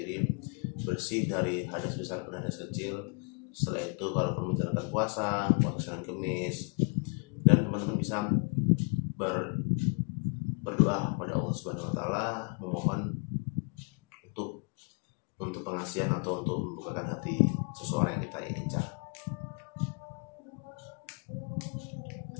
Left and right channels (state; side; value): quieter; right; 37.0 dB